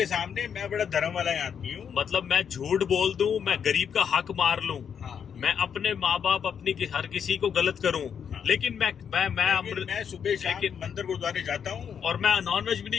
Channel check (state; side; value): quieter; right; 7.6 dB